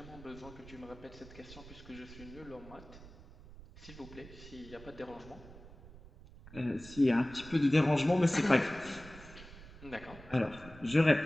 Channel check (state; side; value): noise; right; rumble, 18 dB below the sound